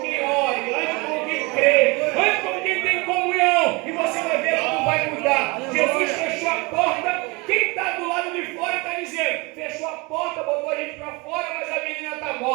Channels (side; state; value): left; quieter; 26.7 dB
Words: quem ore. Ande com quem crê. Ande com quem tem comunhão. E você vai ver como vai mudar. Jesus fechou a porta. Quem está do lado de fora está dizendo: fechou a porta, botou a gente para fora, mas a menina está